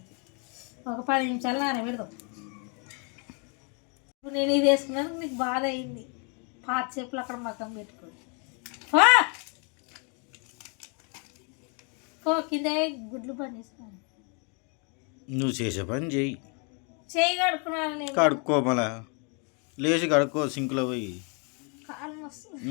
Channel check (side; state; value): right; quieter; 36.2 dB